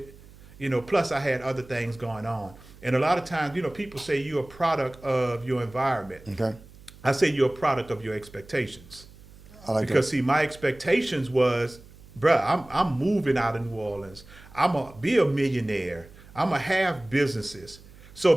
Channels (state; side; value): noise; right; hum, 22 dB below the sound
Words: Plus I had other things going on. And a lot of times, people say you're a product of your environment. Okay. I say you're a product of your expectations. I like Because see, my expectations was, bruh, I'm moving out of New Orleans. I'm gonna be a millionaire. I'm gonna have businesses. So